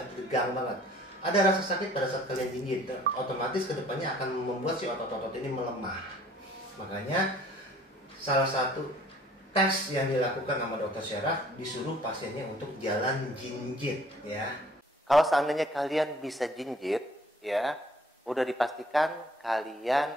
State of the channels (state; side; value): normal; both; correlation 0.56